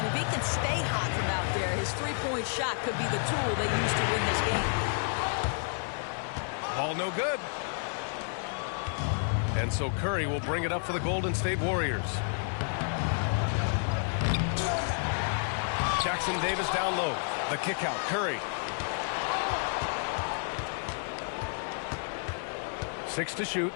if he can stay hot from out there, his three-point shot could be the tool they use to win this game. Ball no good. And so Curry will bring it up for the Golden State Warriors. Jackson Davis down low. The kick out. Curry. 6 to shoot.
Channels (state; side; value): silent; right; 57 dB below the other